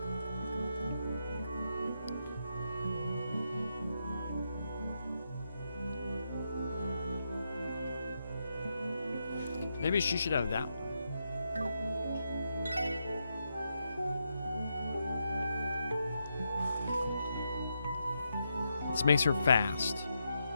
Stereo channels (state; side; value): inverted; both; correlation -0.83